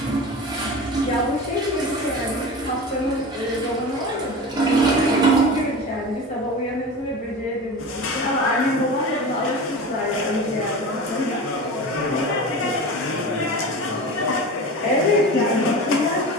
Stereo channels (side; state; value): both; normal; correlation 0.31